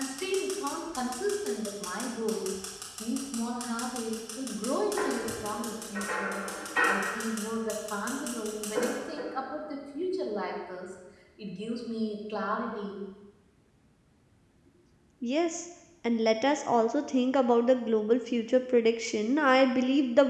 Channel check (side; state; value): both; identical; correlation 1.00